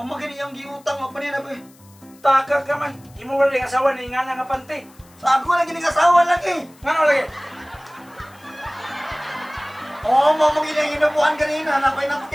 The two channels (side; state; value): left; noise; hiss, 28 dB below the sound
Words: iyang giutang mapanina ba eh. Taka ka man. Imo wala yung asawa ni nga nga panty. Sa ako lagi ng asawa lagi. Ngano lagi? Oo, mamagin iyang inabuhan kanina. Napay